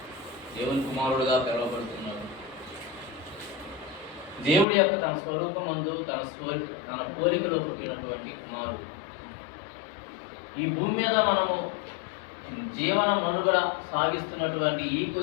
కుమారుడుగా పిలువబడుతున్నాడు. దేవుడి యొక్క తన స్వరూపమందు తన పోలికలో పుట్టినటువంటి కుమారుడు. ఈ భూమి మీద మనము జీవన మనుగడ సాగిస్తున్నటువంటి ఈ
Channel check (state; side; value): drops out; right; at 4.7 s